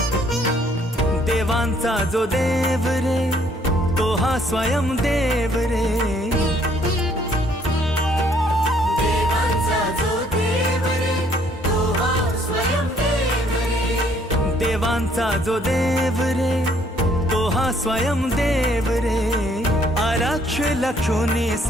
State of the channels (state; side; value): normal; both; correlation 0.64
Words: देवांचा जो देव रे तो हा स्वयं देव रे देवांचा जो देव रे तो हा स्वयं देव रे देवांचा जो देव रे तो हा स्वयं देव रे आरक्ष लक्षोनी